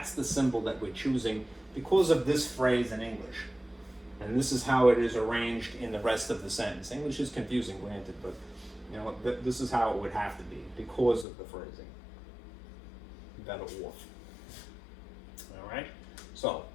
the symbol that we're choosing because of this phrase in English. And this is how it is arranged in the rest of the sentence. English is confusing, granted, but you know, this is how it would have to be because of the phrasing. Better off. All right. So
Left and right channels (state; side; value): drops out; right; at 11.2 s